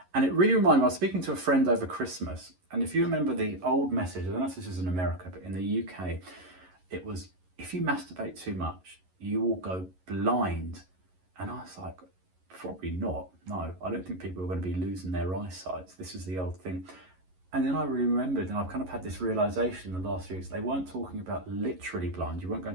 And it really reminded me, I was speaking to a friend over Christmas, and if you remember the old message, I don't know if this is in America, but in the UK, it was, if you masturbate too much, you will go blind. And I was like, probably not. No, I don't think people are going to be losing their eyesight. This is the old thing. And then I remembered, and I've kind of had this realization in the last few weeks, they weren't talking about literally blind. You weren't going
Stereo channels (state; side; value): late; left; 11 ms